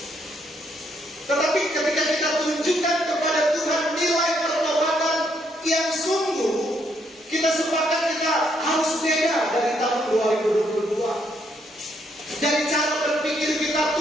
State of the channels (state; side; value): normal; both; correlation 0.73